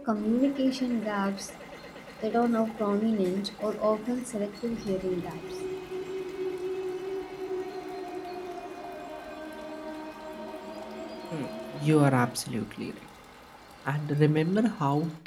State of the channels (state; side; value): identical; both; correlation 1.00